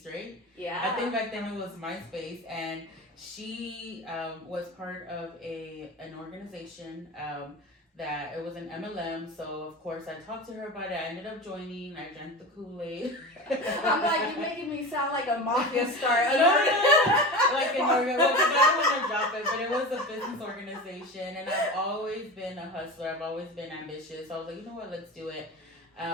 right? Yeah. I think back then it was MySpace, and she was part of an organization that it was an MLM. So of course I talked to her about it. I ended up joining. I drank the Kool-Aid. I'm like, you're making me sound like a mafia star. Like an organization. Well, I don't want to drop it, but it was a business organization, and I've always been a hustler. I've always been ambitious. So I was like, you know what, let's do it.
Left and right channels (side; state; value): both; normal; correlation 0.29